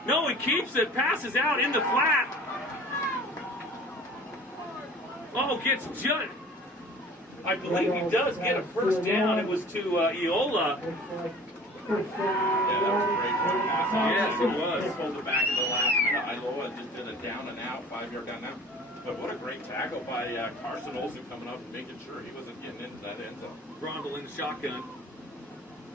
keeps it, passes out in the flat. Oh, gets just. I believe he does get a first down. It was to Iola. Yeah, that was a great run pass. Yes, it was. They pulled it back at the last minute. Iloa just did a down and out, 5-yard down and out. But what a great tackle by Carson Olsen coming up and making sure he wasn't getting into that end zone. Grondel in the shotgun.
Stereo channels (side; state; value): both; normal; correlation 0.46